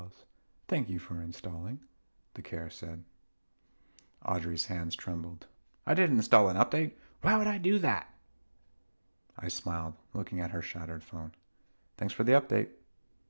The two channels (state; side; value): inverted; both; correlation -1.00